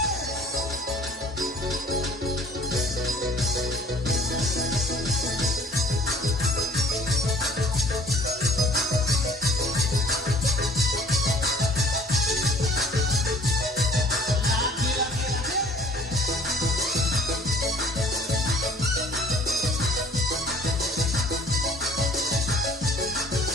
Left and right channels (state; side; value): normal; both; correlation 0.53